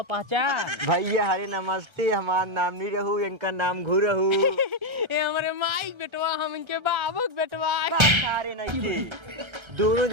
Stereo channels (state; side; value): late; left; 1.3 ms